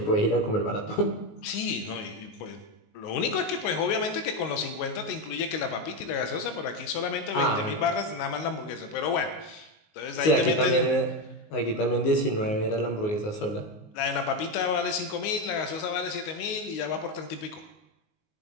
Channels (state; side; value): late; right; 19 ms